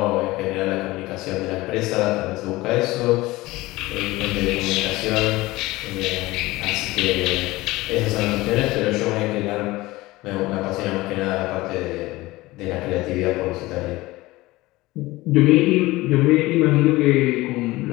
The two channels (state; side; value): quieter; right; 19.5 dB